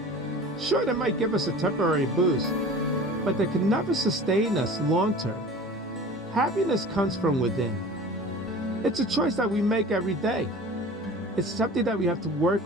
Sure, they might give us a temporary boost, but they can never sustain us long term. Happiness comes from within. It's a choice that we make every day. It's something that we have to work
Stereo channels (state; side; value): normal; both; correlation 0.40